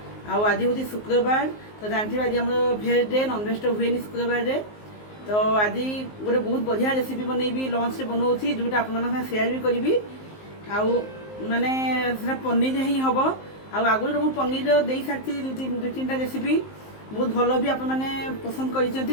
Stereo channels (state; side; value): late; right; 19 ms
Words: आज हूँ शुक्रवार तो जानते आज आम भेज डे नॉनवेज तो हुए शुक्रवार रे तो आज गोटे बहुत बढ़िया रेसिपी बनईबी लंच से बनाऊँगी जोटा आप सेयार भी करी माने पनीर ही हम आगुरी मुझे पनीर दे सारी दु तीन रेसिपी बहुत भल भी आप पसंद कर